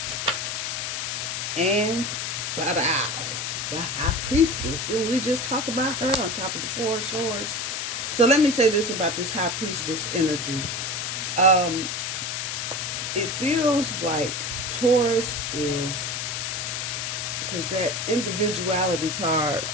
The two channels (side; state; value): left; noise; hiss, 3 dB below the sound